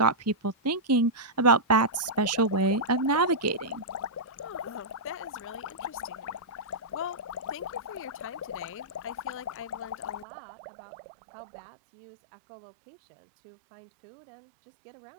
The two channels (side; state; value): left; drops out; at 10.2 s